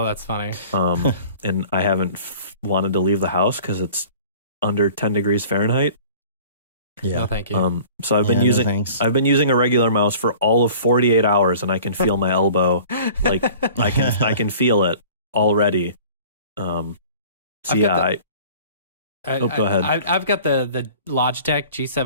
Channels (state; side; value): inverted; both; correlation -0.46